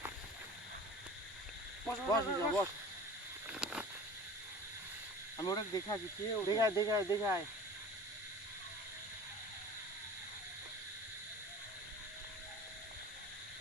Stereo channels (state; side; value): normal; both; correlation 0.40